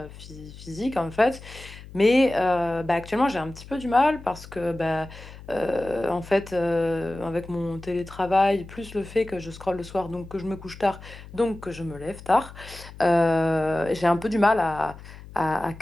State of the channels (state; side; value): noise; left; hum, 16 dB below the sound